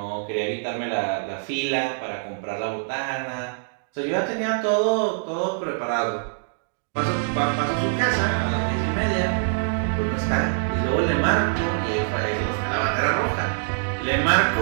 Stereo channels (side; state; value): left; silent; digital silence